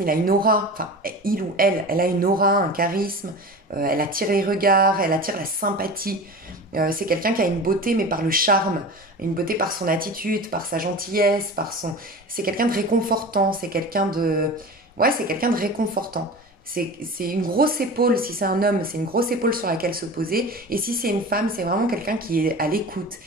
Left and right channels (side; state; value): both; normal; correlation 0.33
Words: il a une aura, enfin, il ou elle a une aura, un charisme, elle attire les regards, elle attire la sympathie. C'est quelqu'un qui a une beauté, mais par le charme, une beauté par son attitude, par sa gentillesse, par son... C'est quelqu'un de réconfortant, c'est quelqu'un de... Ouais, c'est quelqu'un de réconfortant. C'est une grosse épaule, si c'est un homme, c'est une grosse épaule sur laquelle se poser. Et si c'est une femme, c'est vraiment quelqu'un qui est à l'écoute,